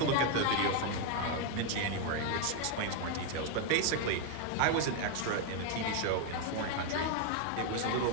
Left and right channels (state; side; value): different; both; correlation 0.01